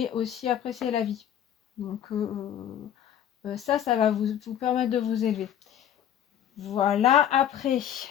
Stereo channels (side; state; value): right; quieter; 10.1 dB